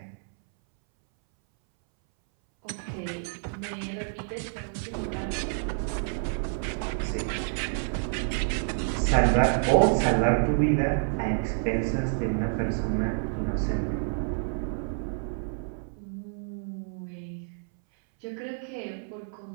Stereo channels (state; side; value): silent; left; 59 dB below the other